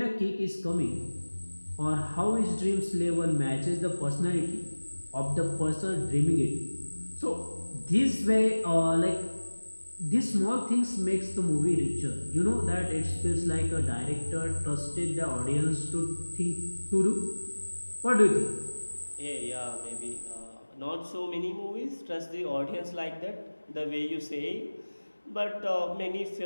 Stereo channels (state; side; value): inverted; both; correlation -1.00